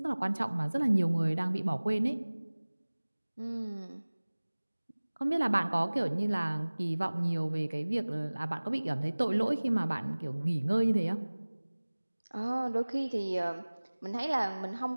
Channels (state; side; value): inverted; both; correlation -1.00